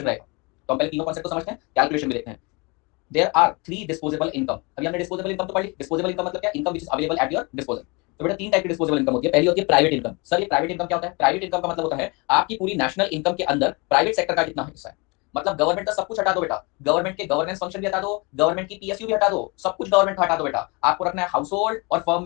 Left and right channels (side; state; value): right; quieter; 28.6 dB